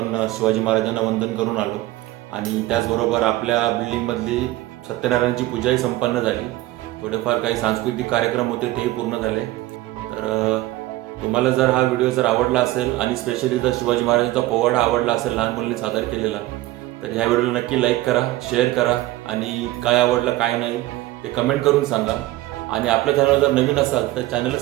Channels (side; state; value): left; quieter; 17.1 dB